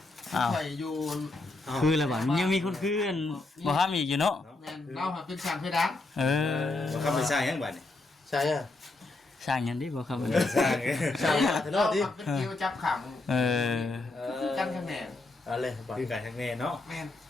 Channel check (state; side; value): quieter; right; 3.1 dB